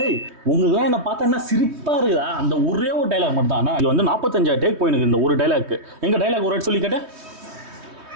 உங்களுக்குலாம் என்ன பார்த்தா என்ன சிரிப்பா இருக்குதா? அந்த ஒரே ஒரு டைலாக் மட்டும் தான். இது வந்து 45 டேக் போயிருக்கு இந்த ஒரு டைலாக். எங்க டைலாக் ஒரு சொல்லி கேட்டேன்.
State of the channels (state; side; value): late; left; 3.2 ms